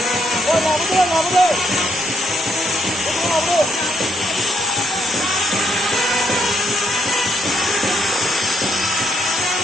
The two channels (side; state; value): both; normal; correlation 0.75